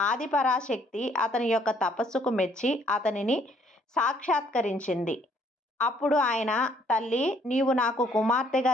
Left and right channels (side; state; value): both; normal; correlation 0.64